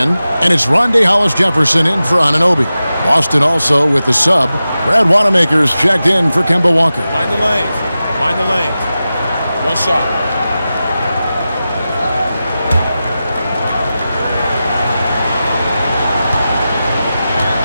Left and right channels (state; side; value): inverted; both; correlation -0.93